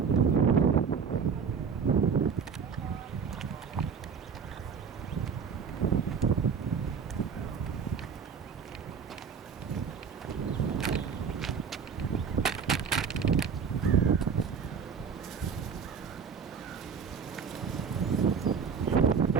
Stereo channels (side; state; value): left; quieter; 6.2 dB